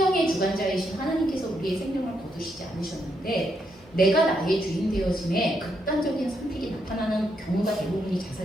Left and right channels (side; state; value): both; normal; correlation 0.78